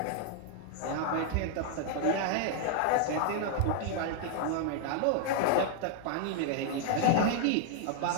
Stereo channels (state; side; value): different; both; correlation 0.00